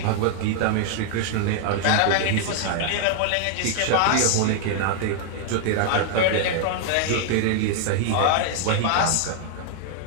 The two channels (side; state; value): both; different; correlation 0.00